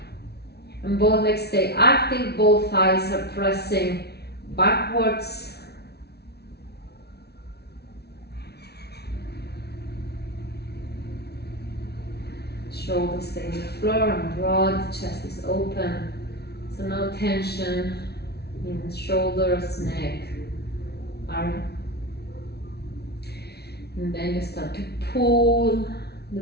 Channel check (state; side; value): late; right; 0.48 ms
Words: And both legs stay active, both thighs are pressing backwards. Shoulders stay on the floor and broad, chest is open. So no tension in the shoulders, neck, arm. And then you start to pull the